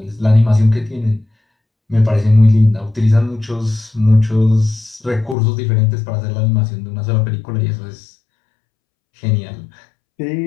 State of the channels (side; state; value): right; drops out; at 5.4 s